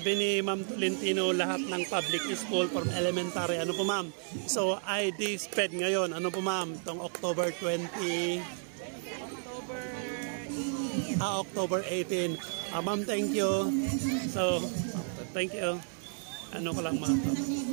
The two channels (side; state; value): left; silent; 56 dB below the other